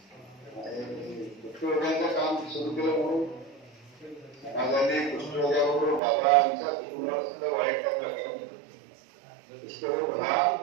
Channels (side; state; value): left; drops out; at 6.0 s